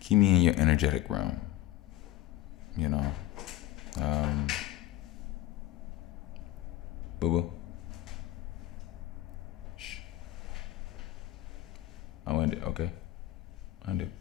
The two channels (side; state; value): right; quieter; 14.4 dB